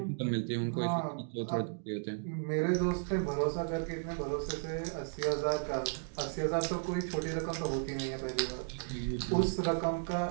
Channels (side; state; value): left; silent; digital silence